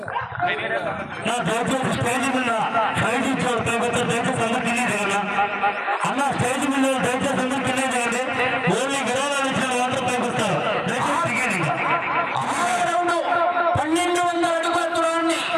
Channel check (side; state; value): both; identical; correlation 1.00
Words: స్టేజ్ మీద ప్రైజ్ ఇచ్చారు దయచేసి అందరూ తెలియజేయాలి అన్న. స్టేజ్ మీద దయచేసి అందరూ తెలియజేయండి. ఓన్లీ గెలవాలని ఇచ్చిన వాటర్ పైకొస్తారు. దయచేసి టికెట్ 1200 అడుగుల దూరాన్ని